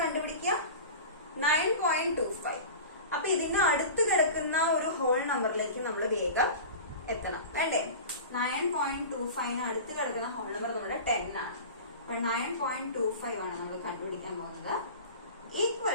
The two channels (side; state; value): both; inverted; correlation -0.34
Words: കണ്ടുപിടിക്കുക? 9.25. അപ്പൊ ഇതിന് അടുത്ത് കിടക്കുന്ന ഒരു ഹോൾ നമ്പറിലേക്ക് നമ്മൾ വേഗം എത്തണം വേണ്ടേ? 9.25 അടുത്ത് കിടക്കുന്ന ഹോൾ നമ്പർ നമ്മുടെ 10 ആണ്. അപ്പൊ 9.25 ആണ് നമ്മൾ കണ്ടുപിടിക്കാൻ പോകുന്നത്.